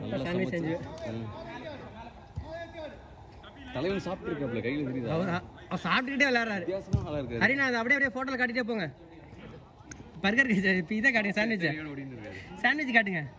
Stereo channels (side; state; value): both; identical; correlation 1.00